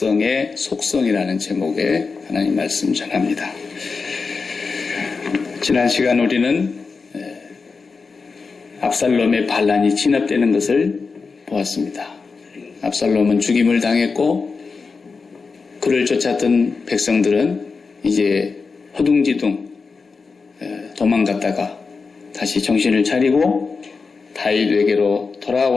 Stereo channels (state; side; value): quieter; right; 4.7 dB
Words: 속성이라는 제목의 하나님 말씀 전합니다. 지난 시간 우리는 압살롬의 반란이 진압되는 것을 보았습니다. 압살롬은 죽임을 당했고 그를 쫓았던 백성들은 이제 허둥지둥 도망갔다가 다시 정신을 차리고 다윗에게로